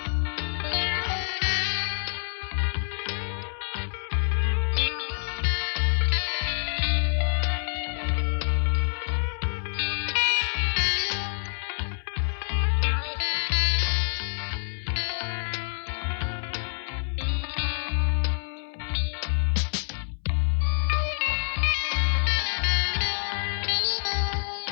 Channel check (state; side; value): silent; right; 59 dB below the other